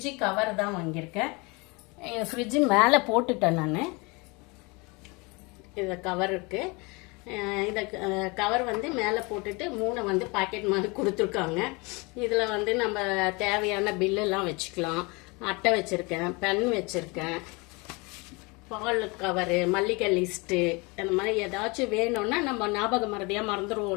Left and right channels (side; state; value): right; quieter; 27.5 dB